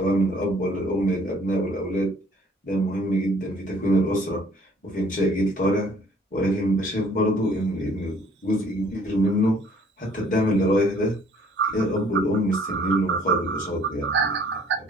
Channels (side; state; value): both; normal; correlation 0.58